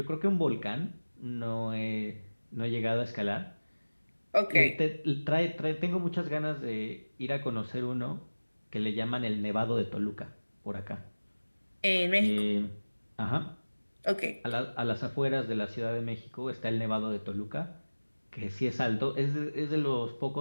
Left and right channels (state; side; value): inverted; both; correlation -1.00